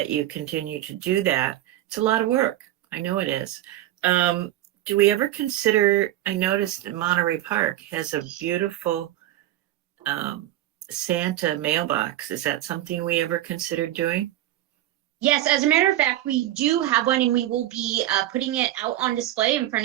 you continue to do that. It's a lot of work. I know it is. Do we ever consider, I noticed that Monterey Park has a beautiful Santa mailbox. Is that something we ever considered doing? Yes, as a matter of fact, we do have one, and we will be putting it out on display in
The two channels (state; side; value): quieter; left; 13.9 dB